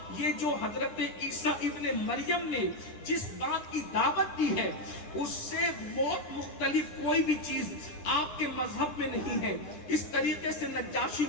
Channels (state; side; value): late; right; 9.9 ms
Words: یہ جو حضرت عیسیٰ ابن مریم نے جس بات کی دعوت دی ہے اس سے بہت مختلف کوئی بھی چیز آپ کے مذہب میں نہیں ہے. اس طریقے سے نجاشی